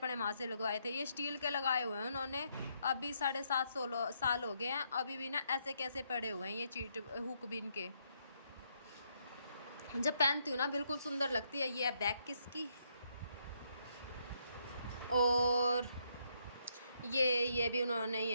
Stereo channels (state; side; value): inverted; both; correlation -0.75